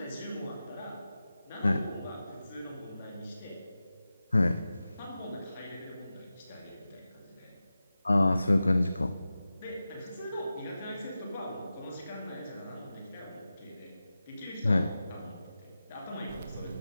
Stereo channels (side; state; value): both; inverted; correlation -0.93